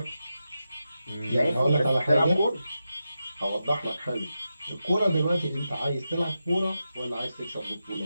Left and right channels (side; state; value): both; inverted; correlation -0.90